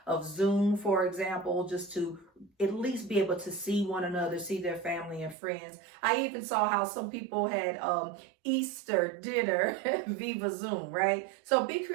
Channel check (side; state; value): left; drops out; at 5.4 s